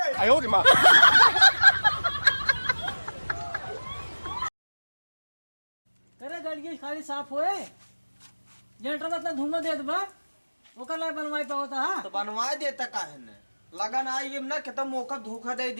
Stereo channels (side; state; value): both; inverted; correlation -1.00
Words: 哎呦我的妈！ करे गड़िए खाली साफ होए जनरेटर में इतना धुआं देत बा ओकर ला बनवाई पावता हा तो बनवा देता काहे ने लगन आई ना कितना मौका धोखा दे